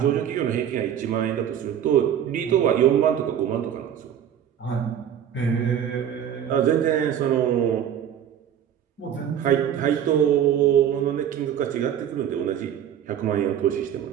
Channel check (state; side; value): quieter; left; 9.6 dB